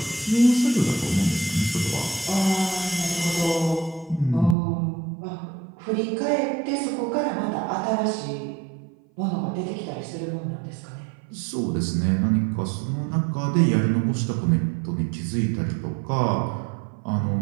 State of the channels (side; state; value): left; drops out; at 4.5 s